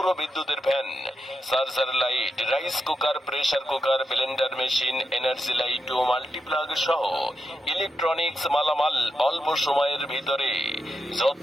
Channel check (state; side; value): normal; both; correlation 0.86